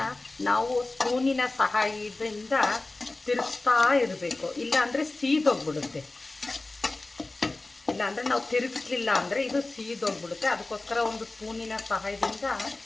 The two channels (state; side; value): quieter; right; 3.1 dB